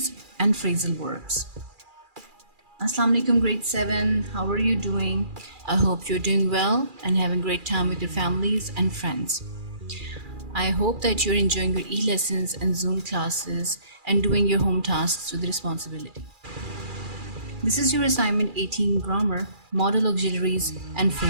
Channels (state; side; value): late; left; 2.4 ms